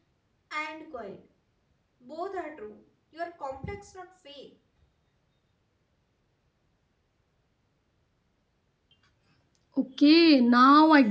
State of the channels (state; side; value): identical; both; correlation 1.00